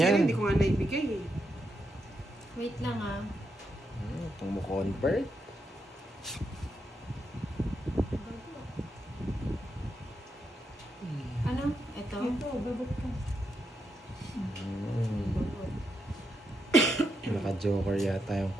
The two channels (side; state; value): both; normal; correlation 0.82